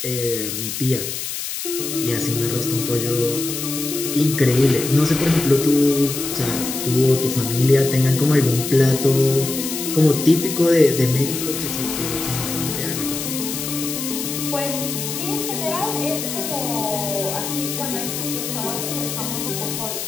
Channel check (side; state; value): left; noise; hiss, 5 dB below the sound